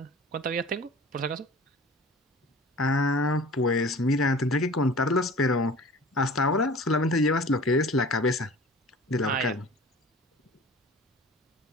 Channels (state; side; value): normal; both; correlation 0.42